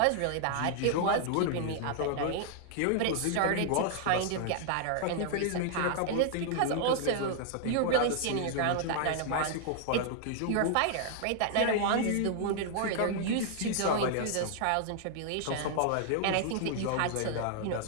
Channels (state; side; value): different; both; correlation -0.01